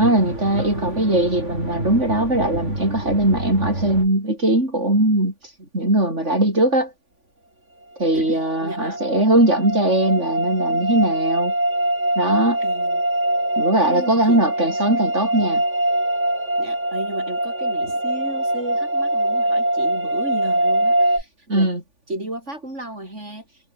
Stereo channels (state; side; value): late; left; 3.5 ms